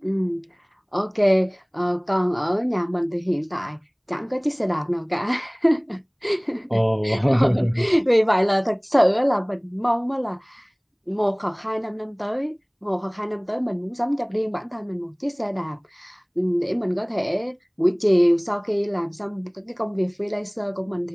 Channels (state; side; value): identical; both; correlation 1.00